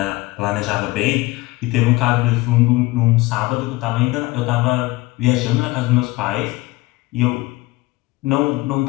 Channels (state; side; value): quieter; right; 20.5 dB